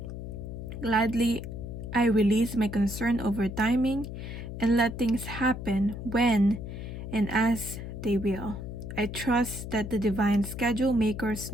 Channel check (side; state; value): left; noise; hum, 8 dB below the sound